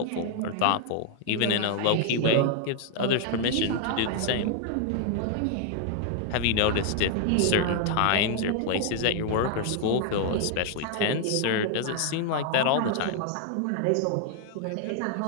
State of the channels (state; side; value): different; both; correlation 0.00